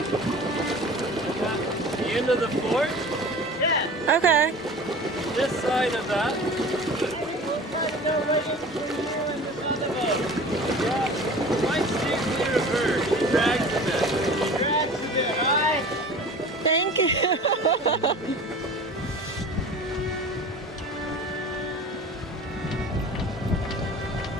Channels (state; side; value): normal; both; correlation 0.39